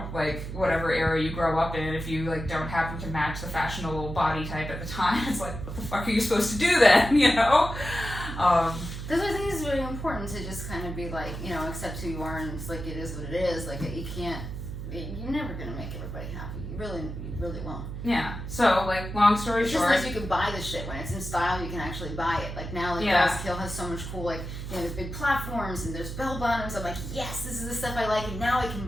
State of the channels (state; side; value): noise; right; hum, 7 dB below the sound